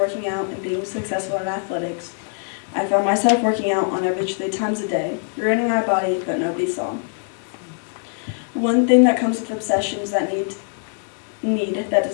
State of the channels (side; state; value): right; silent; 64 dB below the other